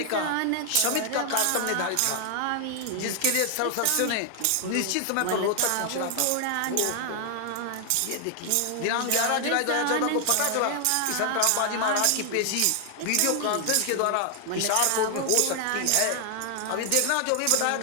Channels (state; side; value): different; both; correlation 0.00